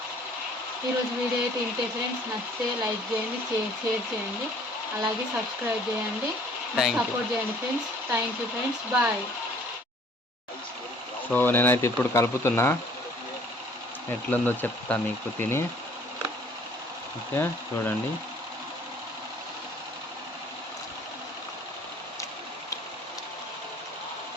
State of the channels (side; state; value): both; normal; correlation 0.56